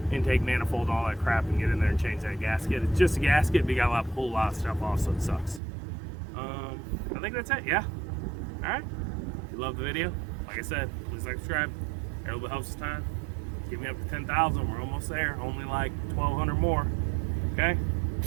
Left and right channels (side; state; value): left; drops out; at 5.6 s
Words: intake manifold, all that crap, and get in there and change that gasket. It's just a gasket, but you got to pull a lot of stuff off, so it sucks. I think that's it, yeah. All right. If you love the video, like I said, please like, subscribe. It really helps us time. Get me up to 10,000. We're almost there. Only like 1,200 more. Okay?